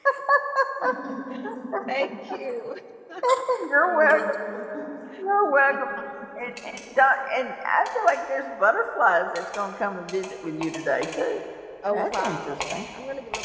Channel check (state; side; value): identical; both; correlation 1.00